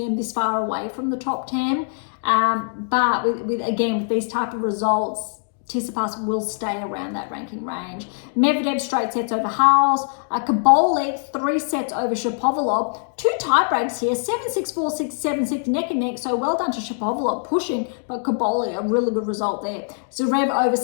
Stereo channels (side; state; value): right; silent; digital silence